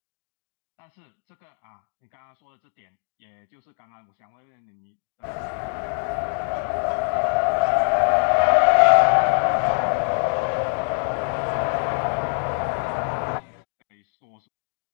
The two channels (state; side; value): silent; right; 56 dB below the other